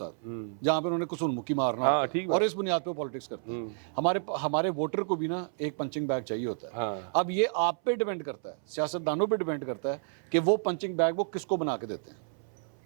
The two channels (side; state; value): left; silent; 58 dB below the other